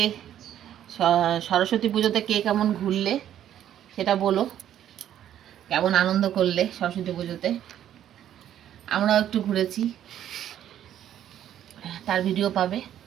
সরস্বতী পুজোতে কে কেমন ঘুরলে সেটা বলো, কেমন আনন্দ করলে সরস্বতী পুজোতে। আমরাও একটু ঘুরেছি, তার ভিডিও পাবে।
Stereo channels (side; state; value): left; quieter; 10.9 dB